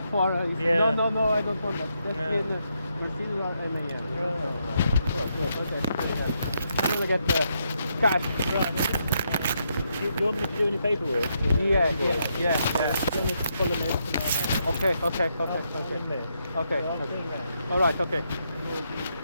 or Yeah. no, I don't want that. Just Yeah. in Mercedes or MAN. You know? Right. Oh, good. Okay. I'm gonna get the cash. Do you want me to do any paperwork? Yeah. Do you want me to fill them in? Okay. I'll come there. Okay. Yeah, I'll turn round. All right. Okay.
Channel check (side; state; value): both; inverted; correlation -0.79